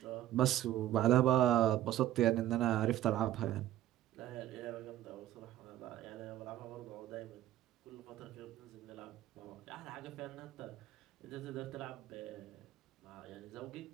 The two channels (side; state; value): left; quieter; 13.0 dB